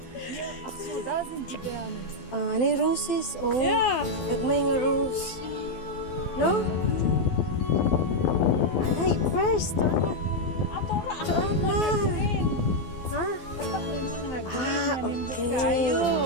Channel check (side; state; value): right; late; 12 ms